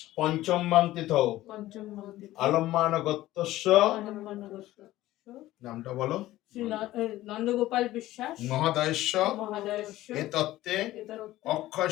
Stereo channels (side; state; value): right; quieter; 15.7 dB